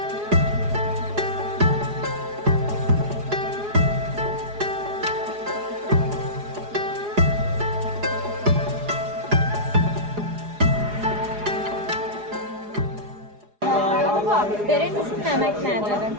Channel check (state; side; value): late; left; 4.8 ms